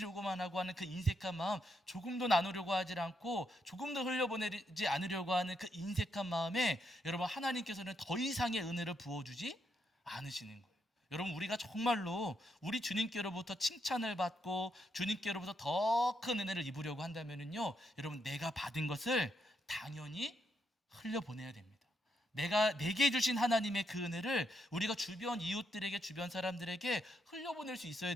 하고 하는 그 인색한 마음 조금도 나누려고 하지 않고 조금도 흘려보내지 않으려고 하는 그 인색한 마음에 여러분 하나님께서는 더 이상의 은혜를 부어주지 않으시는 거예요. 여러분 우리가 정말로 우리 주님께로부터 칭찬을 받고 주님께로부터 더 큰 은혜를 입으려고 한다면요 여러분 내가 받은 것을 당연히 흘려보내야 됩니다. 내게 주신 하나님의 그 은혜를 우리가 주변 이웃들에게 주변 사람들에게 흘려보낼 수 있어야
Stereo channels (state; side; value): normal; both; correlation 0.79